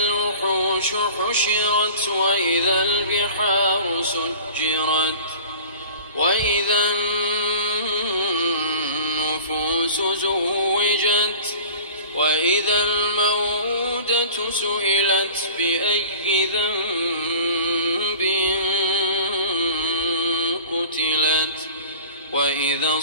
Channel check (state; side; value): inverted; both; correlation -0.41